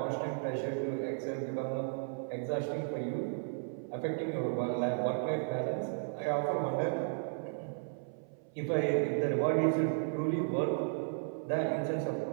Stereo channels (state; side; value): silent; left; 55 dB below the other